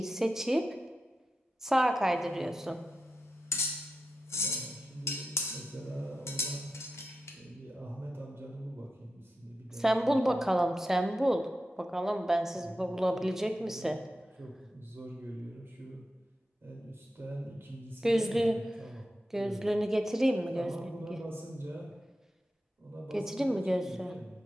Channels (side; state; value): both; normal; correlation 0.90